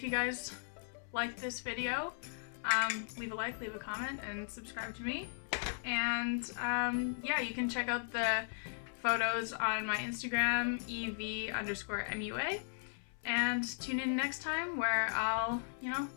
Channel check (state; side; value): silent; right; 53 dB below the other